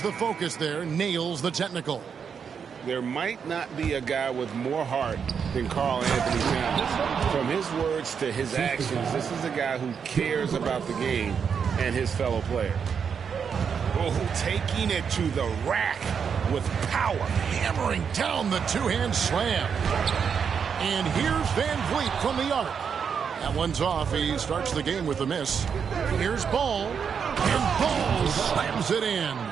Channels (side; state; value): left; quieter; 6.8 dB